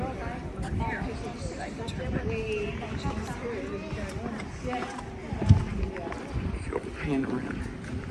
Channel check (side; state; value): both; identical; correlation 1.00